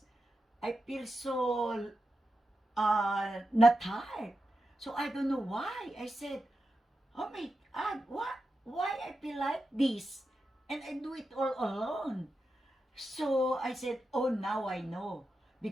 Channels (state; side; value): normal; both; correlation 0.89